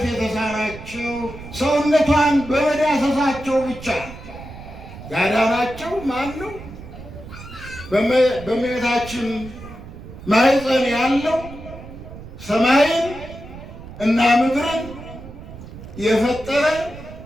የተሳናቸው ሰውነቷን በመዳሰሳቸው ብቻ ያዳናቸው ማን ነው? በእመቤታችን ማኅፀን ያለው ሰማይን እና ምድርን የፈጠረ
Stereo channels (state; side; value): noise; right; rumble, 14 dB below the sound